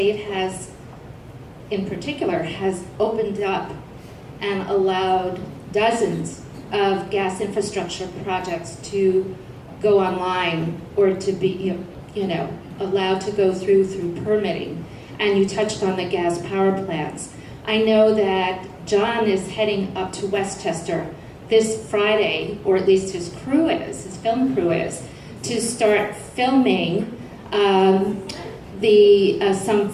has, in particular, has opened up and allowed dozens of gas infrastructure projects to go online or to be, allowed to go through permitting. And you touched on the gas power plants. I know that John is heading up to Westchester this Friday, or at least his film crew is, to start filming some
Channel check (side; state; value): both; identical; correlation 1.00